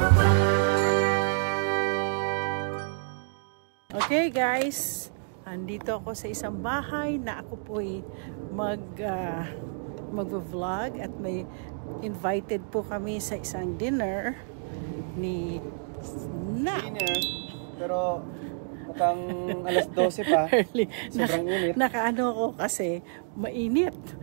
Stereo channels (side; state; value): left; silent; digital silence